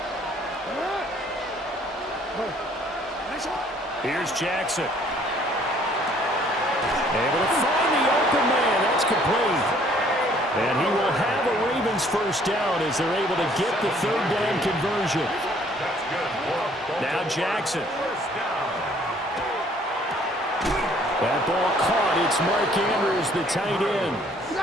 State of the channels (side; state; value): both; normal; correlation 0.60